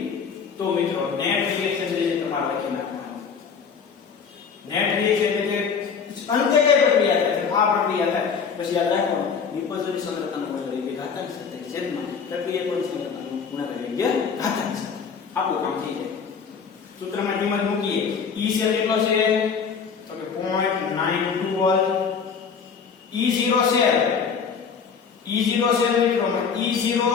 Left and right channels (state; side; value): quieter; right; 6.1 dB